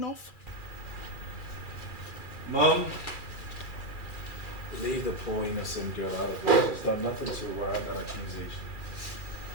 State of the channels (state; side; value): late; right; 2.4 ms